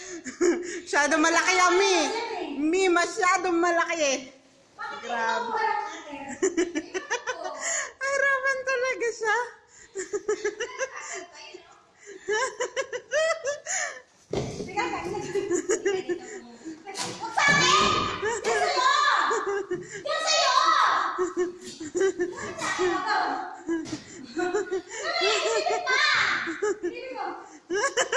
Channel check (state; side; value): identical; both; correlation 1.00